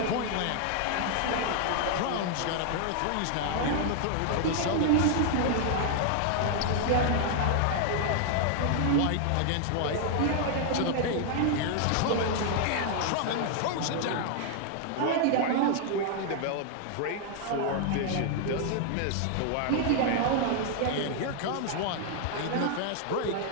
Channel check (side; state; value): both; different; correlation 0.00